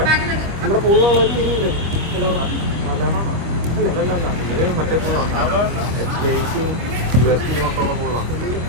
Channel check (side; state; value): left; late; 25 ms